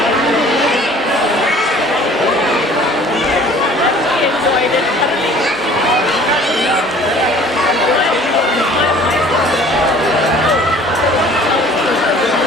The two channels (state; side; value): normal; both; correlation 0.50